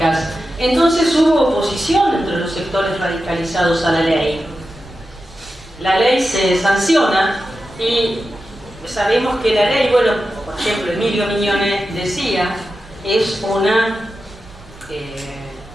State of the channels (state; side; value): normal; both; correlation 0.91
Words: Entonces hubo oposición entre los sectores radicalizados a la ley. La ley se sanciona y sabemos que la ley, bueno, por ejemplo, Emilio Miñones decía, es